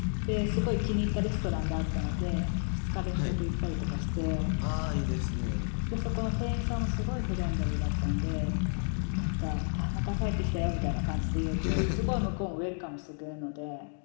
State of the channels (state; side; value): silent; right; 56 dB below the other